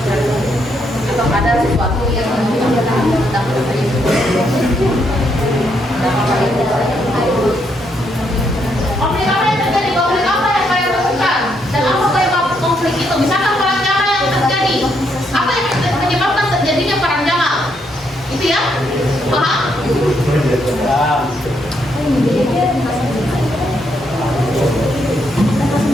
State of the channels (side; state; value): both; normal; correlation 0.76